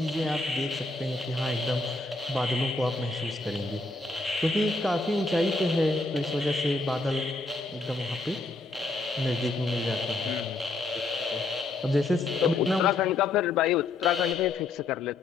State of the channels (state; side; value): quieter; right; 3.2 dB